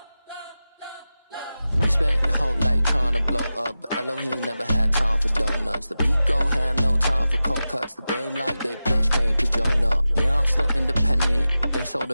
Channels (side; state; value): both; inverted; correlation -0.94